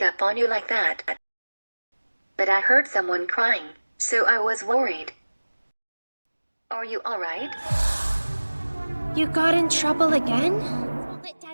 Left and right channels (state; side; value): inverted; both; correlation -1.00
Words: up on you like that. But I heard someone crying, so I was worried. Are you alright? You got in trouble again? Let